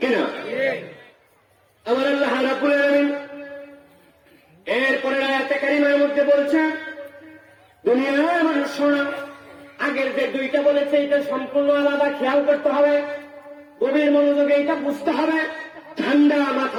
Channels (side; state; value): both; identical; correlation 1.00